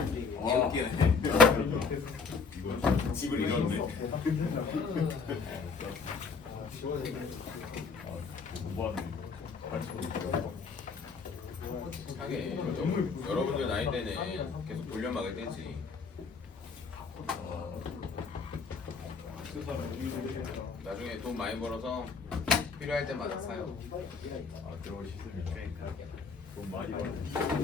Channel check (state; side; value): quieter; right; 4.9 dB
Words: 웃기네. 집을 잃었네. 공부하는 하게 여러분들 나이 때는 계속 돌려막을 때지. 나중에 돈 많이 벌어서 필요할 때마다 사요. 그런 시스템인데 돈 많이